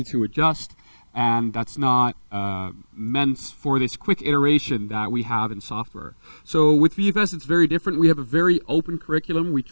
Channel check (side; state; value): both; inverted; correlation -1.00